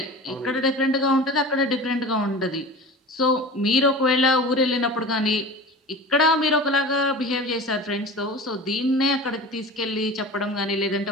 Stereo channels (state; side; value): normal; both; correlation 0.36